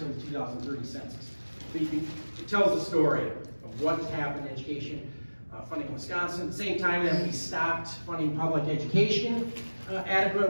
the 2030 census. But it tells the story of what's happened in education funding in Wisconsin. At the same time that we stopped funding public education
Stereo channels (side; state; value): both; inverted; correlation -1.00